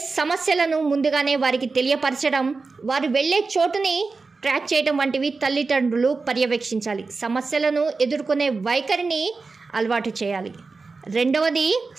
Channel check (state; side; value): quieter; left; 4.1 dB